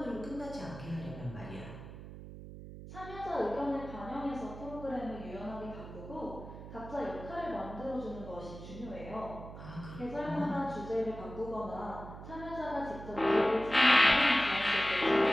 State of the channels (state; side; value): noise; right; hum, 12 dB below the sound